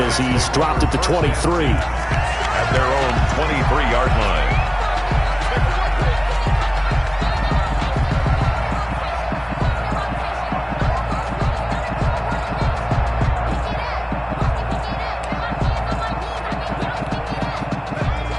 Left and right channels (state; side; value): identical; both; correlation 1.00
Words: he's dropped at the 23. At their own 23-yard line.